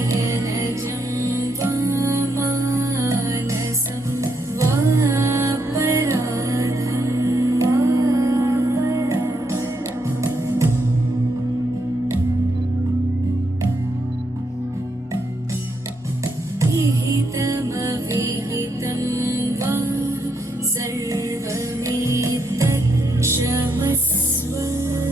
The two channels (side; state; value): both; normal; correlation 0.78